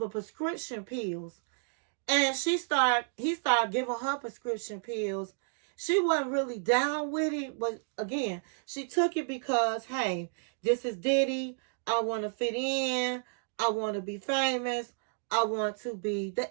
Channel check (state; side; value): silent; left; digital silence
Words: prescription pills. And he started giving her prescription pills. She wasn't really down with it, but again, she took it because, hey, this is Diddy. I want to fit in. I want to be famous. I want to be the